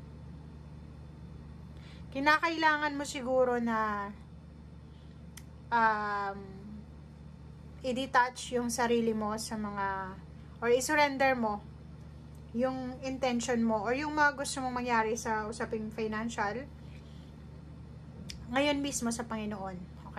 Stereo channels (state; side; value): identical; both; correlation 1.00